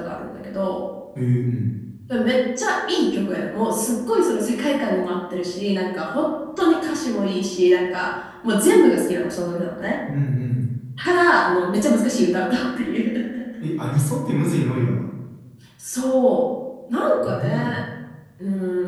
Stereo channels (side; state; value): both; identical; correlation 1.00